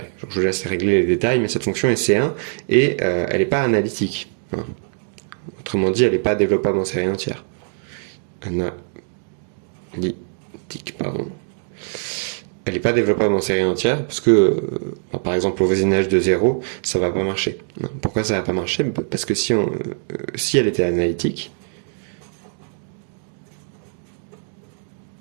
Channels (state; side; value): silent; left; digital silence